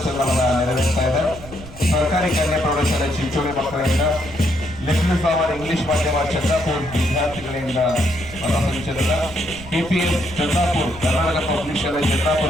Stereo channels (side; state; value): right; noise; rumble, 16 dB below the sound